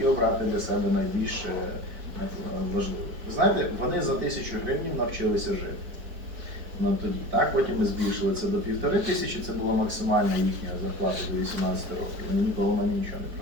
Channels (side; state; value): left; late; 4.5 ms